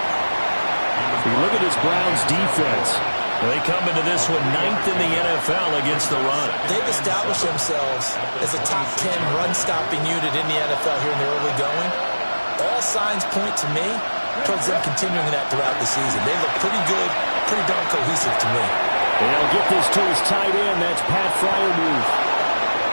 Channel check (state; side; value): inverted; both; correlation -1.00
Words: If you look at this Browns defense, they come into this one 9th in the NFL against the run. They've established themselves as a top 10 run-stopping unit in the NFL here in the early going. All signs point to me towards them continuing that throughout the season. They look pretty good, pretty darn cohesive to me. And he'll get this to his tight end. That's Pat Freiermuth.